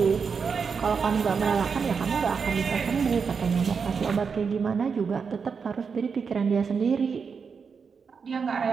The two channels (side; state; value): left; quieter; 5.8 dB